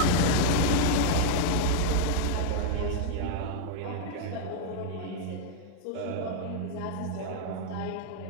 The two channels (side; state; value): both; different; correlation 0.00